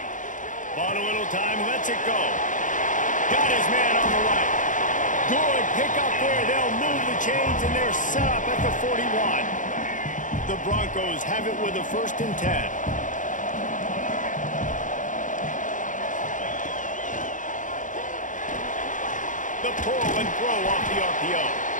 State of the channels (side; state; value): right; late; 0.37 ms